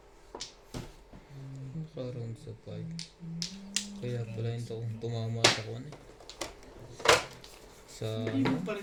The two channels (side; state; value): both; identical; correlation 1.00